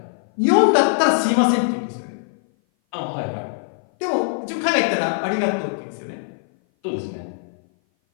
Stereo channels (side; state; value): right; silent; 57 dB below the other